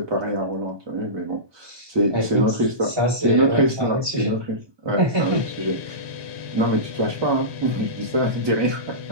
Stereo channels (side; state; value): left; late; 1.2 ms